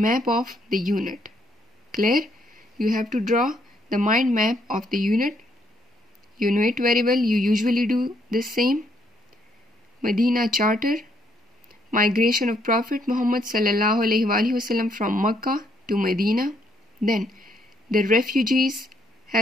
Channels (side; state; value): both; normal; correlation 0.71